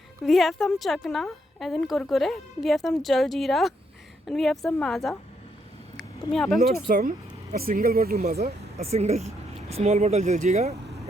have some chakna as in Kurkure, we have some jaljeera and we have some Maaza. तुम यहाँ पे a single bottle maza, a single small bottle jaljeera,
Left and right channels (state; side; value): normal; both; correlation 0.75